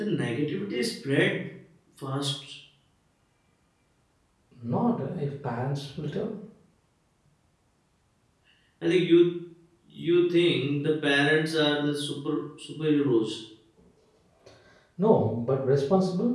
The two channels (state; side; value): identical; both; correlation 1.00